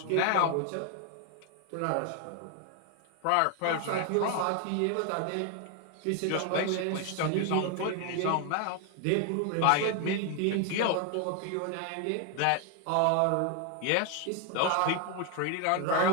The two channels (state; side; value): different; both; correlation 0.01